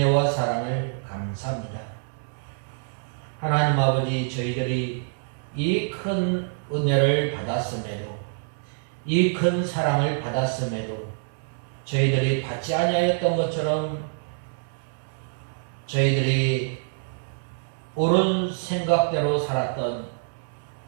사랑을 감사합니다. 하나님 아버지, 저희들이 이 큰 은혜를 받았음에도 이 큰 사랑을 받았음에도 저희들이 받지 아니하였던 것처럼 저희들이 옳은 생각대로 살았던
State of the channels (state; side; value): silent; left; 61 dB below the other